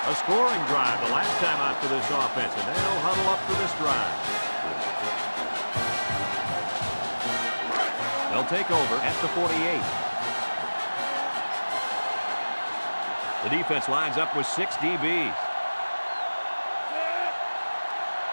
A scoring drive the last time out for this offense, and they'll huddle up for this drive. They'll take over at the 48. The defense lines up with 6 DBs.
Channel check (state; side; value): inverted; both; correlation -1.00